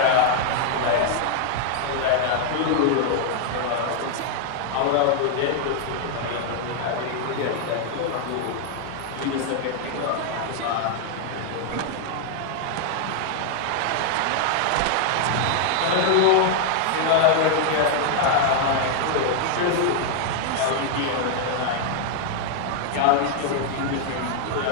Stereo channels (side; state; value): both; different; correlation 0.00